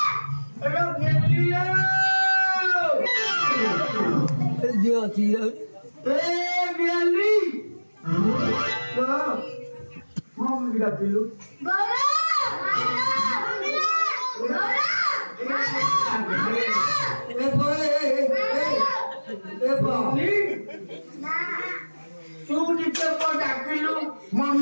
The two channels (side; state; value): both; inverted; correlation -1.00